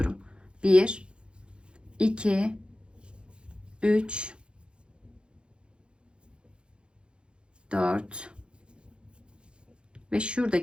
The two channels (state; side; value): late; left; 0.055 ms